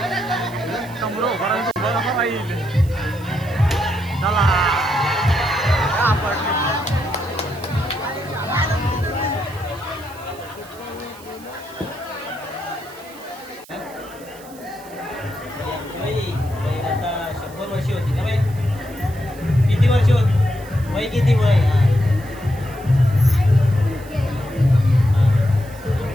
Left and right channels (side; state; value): right; noise; hiss, 22 dB below the sound